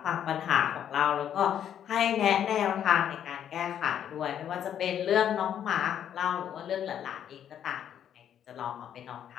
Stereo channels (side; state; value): right; quieter; 9.7 dB